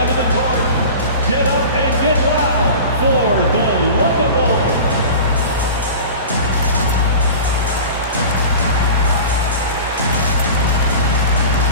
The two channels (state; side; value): inverted; both; correlation -0.35